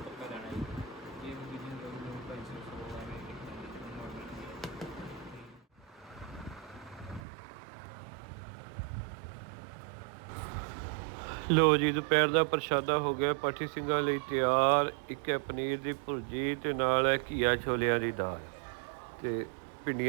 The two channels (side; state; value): left; drops out; at 7.2 s